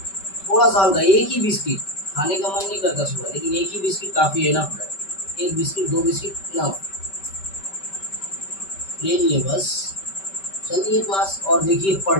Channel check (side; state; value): right; late; 5.2 ms